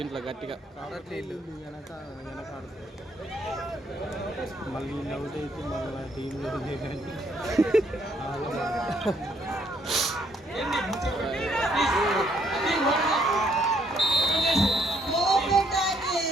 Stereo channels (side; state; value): both; normal; correlation 0.70